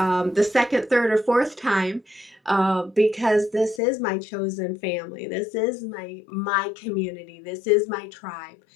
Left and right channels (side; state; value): right; drops out; at 3.8 s